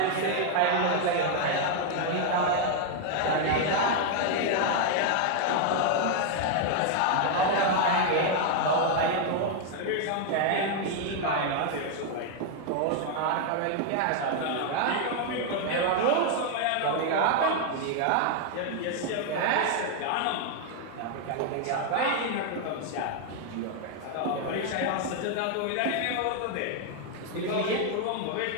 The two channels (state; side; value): different; both; correlation 0.00